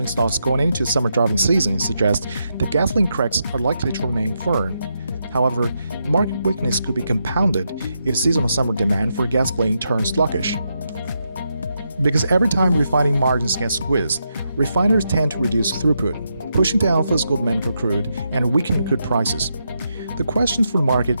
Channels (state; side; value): inverted; both; correlation -0.83